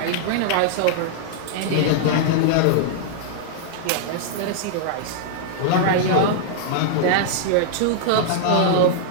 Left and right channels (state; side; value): different; both; correlation -0.01